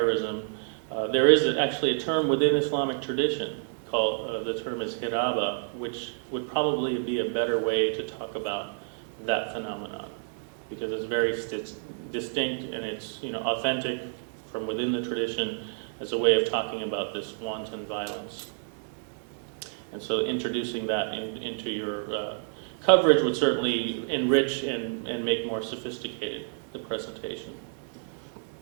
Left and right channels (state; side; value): silent; left; digital silence